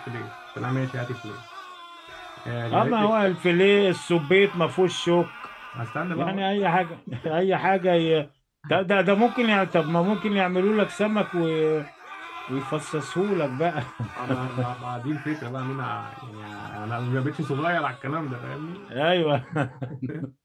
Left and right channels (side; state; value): both; identical; correlation 1.00